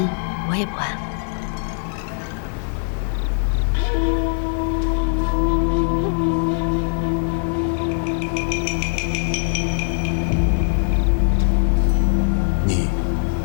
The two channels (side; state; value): right; silent; 60 dB below the other